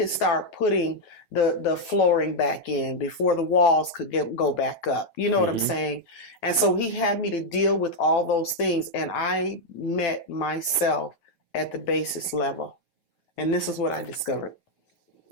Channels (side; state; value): right; late; 9.3 ms